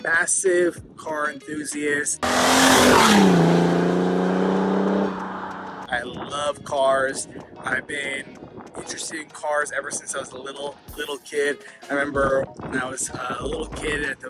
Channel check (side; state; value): both; identical; correlation 1.00